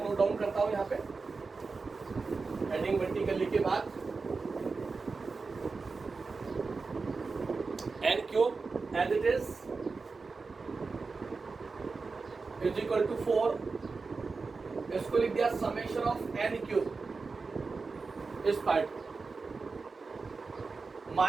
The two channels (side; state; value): left; quieter; 4.3 dB